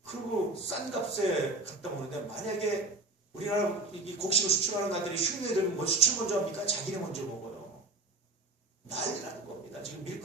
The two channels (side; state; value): left; quieter; 3.1 dB